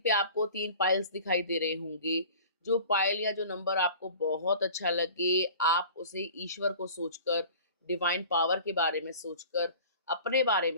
आपको 3 पाइल्स दिखाई दे रहे होंगे। जो पाइल या जो नंबर आपको बहुत अच्छा लगे, आप उसे ईश्वर को सोचकर, डिवाइन पावर के बारे में सोचकर, अपने बारे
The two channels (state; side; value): inverted; both; correlation -0.44